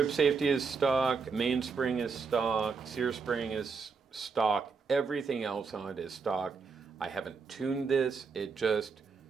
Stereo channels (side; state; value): left; quieter; 5.1 dB